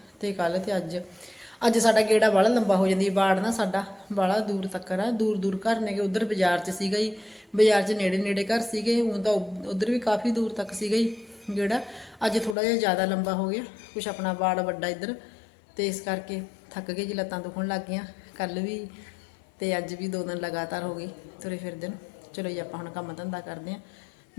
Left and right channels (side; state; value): right; drops out; at 12.6 s